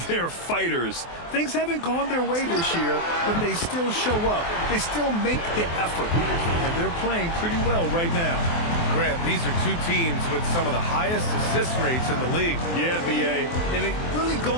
they're fighters. Things haven't gone their way this year, but they still show up. They still make the effort, and they're playing pretty well right now. Grant, these are two teams with some of the highest assist rates in the league. Yeah, B.A., and it really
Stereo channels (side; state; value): right; late; 24 ms